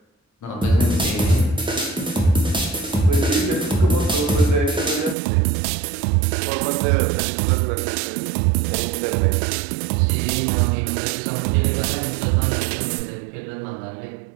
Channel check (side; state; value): left; drops out; at 5.2 s